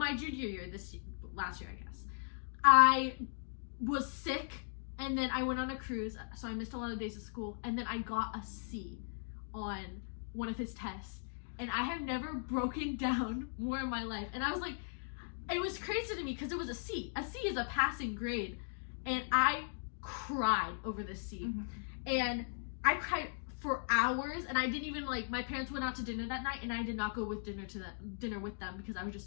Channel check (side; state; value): right; silent; digital silence